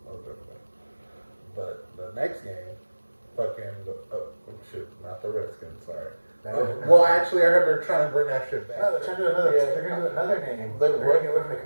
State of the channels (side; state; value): both; inverted; correlation -1.00